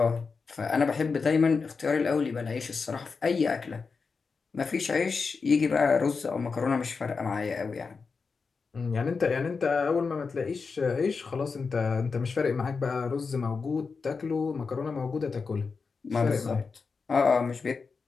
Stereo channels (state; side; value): quieter; right; 4.9 dB